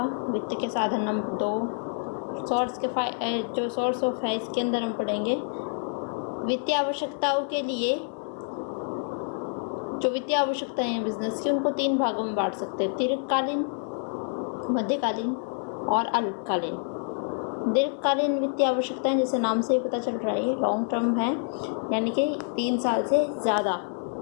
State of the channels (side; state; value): right; silent; 59 dB below the other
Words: वित्त के साधन नंबर 2। जो सोर्स ऑफ है इसके अंदर हम पढ़ेंगे वित्तीय आवश्यकताओं के लिए। जो वित्तीय आवश्यकताएं हैं बिजनेस की, उनको 3 भागों में बांट सकते हैं: दीर्घकालीन, मध्यकालीन और अल्पकालीन। दीर्घकालीन वित्तीय आवश्यकताएं जैसे नाम से ही पता चल रहा है लॉन्ग टर्म है, यानी कि 3 साल से ज़्यादा।